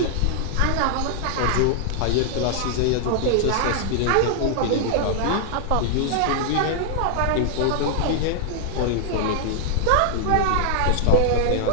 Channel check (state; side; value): different; both; correlation 0.00